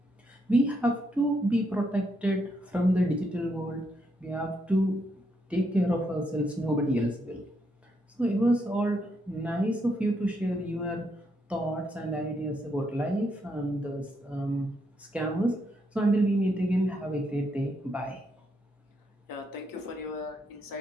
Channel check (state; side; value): normal; both; correlation 0.78